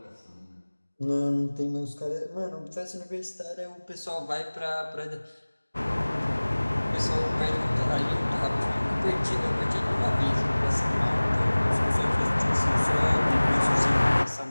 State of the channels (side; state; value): both; inverted; correlation -1.00